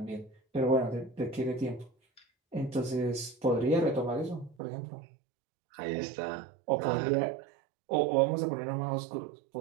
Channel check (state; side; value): drops out; left; at 4.5 s